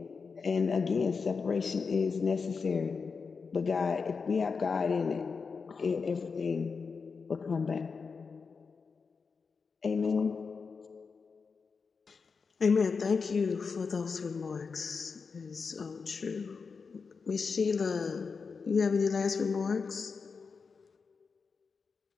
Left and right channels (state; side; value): quieter; right; 5.1 dB